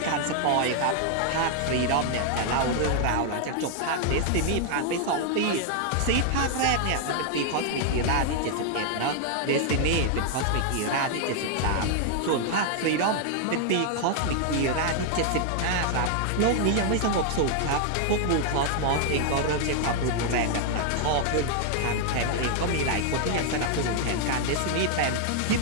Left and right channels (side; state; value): both; different; correlation 0.00